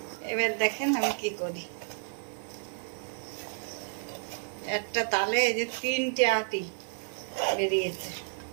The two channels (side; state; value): left; silent; 57 dB below the other